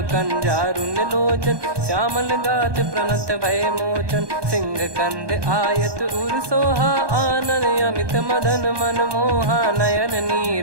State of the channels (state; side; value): late; left; 1.2 ms